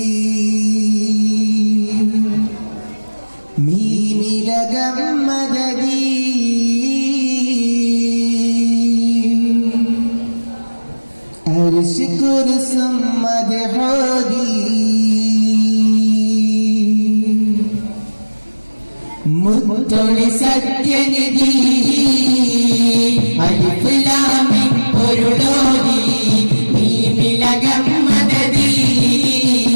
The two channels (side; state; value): both; inverted; correlation -1.00